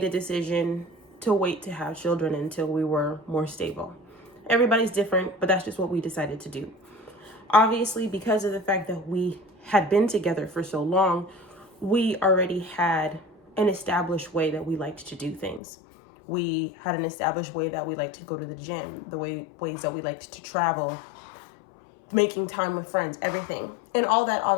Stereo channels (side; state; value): right; drops out; at 15.6 s